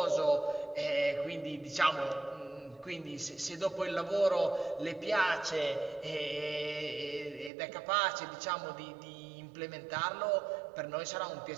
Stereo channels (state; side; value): drops out; left; at 7.5 s